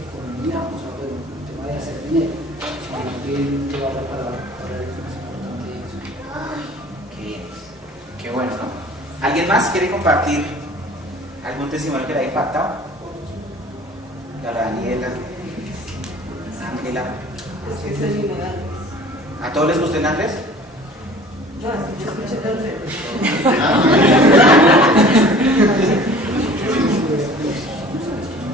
o sea, bueno, el tema de hacer dinero, sino que llevar la palabra para él es más importante eso. Qué bien, qué bueno, ¿no? ¿Alguien más quiere compartir algún testimonio que le haya impactado? Daniela, Ángela. ¿A todos les gustó el Andrés? No, es que yo escuché todo el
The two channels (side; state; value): both; normal; correlation 0.47